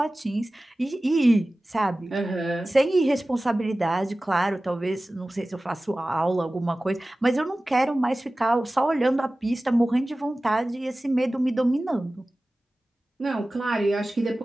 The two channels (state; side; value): normal; both; correlation 0.97